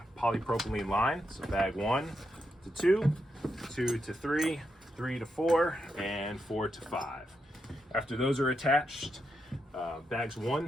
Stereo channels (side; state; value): both; normal; correlation 0.83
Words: polypropylene line. So bag 1 to 2, 2 to 3, 3 to 4, and 4 to 5. After those are attached, bags 1,